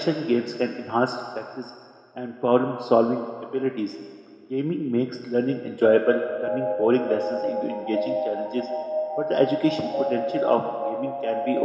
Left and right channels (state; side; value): identical; both; correlation 1.00